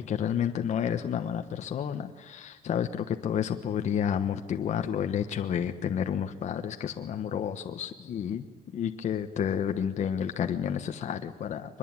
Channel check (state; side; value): quieter; right; 8.3 dB